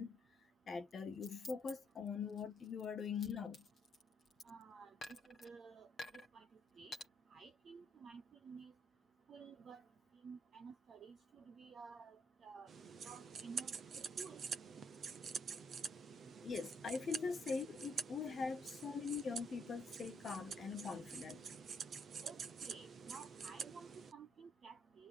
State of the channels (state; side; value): normal; both; correlation 0.73